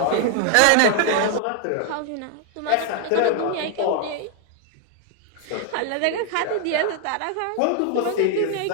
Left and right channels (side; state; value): both; different; correlation 0.00